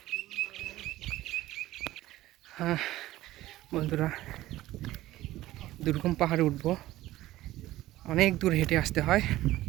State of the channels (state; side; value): quieter; left; 15.9 dB